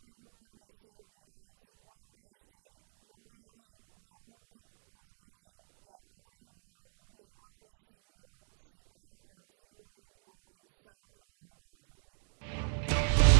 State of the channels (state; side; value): silent; left; digital silence